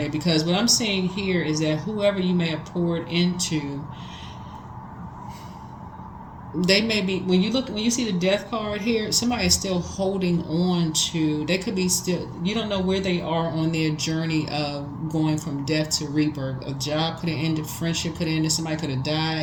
because what I'm seeing here is that whoever you may have poured into, they may be, when you see the death card here, somebody is still holding on to, they could be still, you don't know where they are on their journey of going from death to rebirth. A job could have ended, friendship could have ended, somebody could have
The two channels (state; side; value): identical; both; correlation 1.00